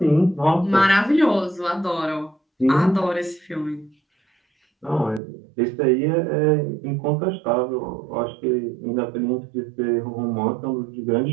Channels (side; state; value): left; drops out; at 5.2 s